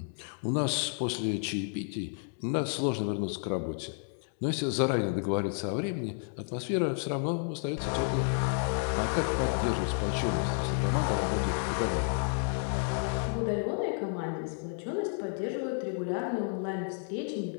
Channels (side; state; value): right; silent; 57 dB below the other